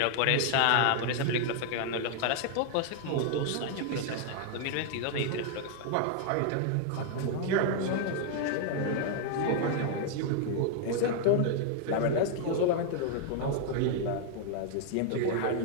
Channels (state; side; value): different; both; correlation 0.00